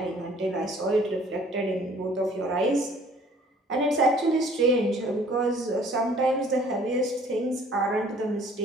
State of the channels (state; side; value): normal; both; correlation 0.55